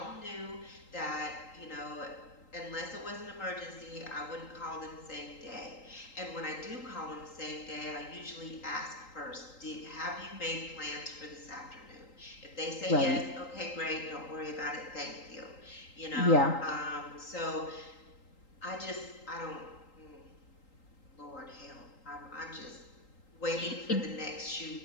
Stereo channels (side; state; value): right; late; 3.8 ms